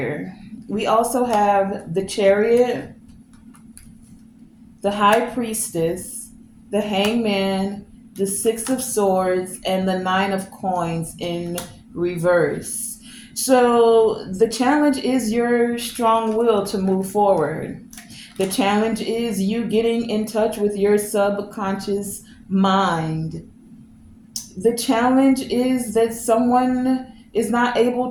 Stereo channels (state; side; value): identical; both; correlation 1.00